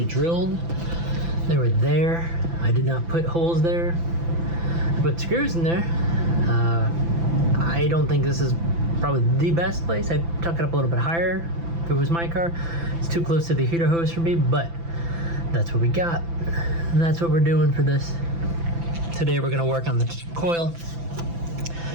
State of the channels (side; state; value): left; late; 5.9 ms